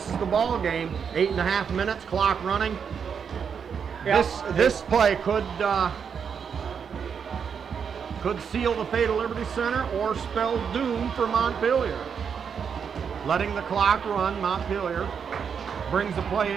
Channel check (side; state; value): left; quieter; 6.9 dB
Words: is the ball game. 8.5 minutes, clock running. Yeah. This play could seal the fate of Liberty Center or spell doom for Montpelier. Letting the clock run, Montpelier brings the play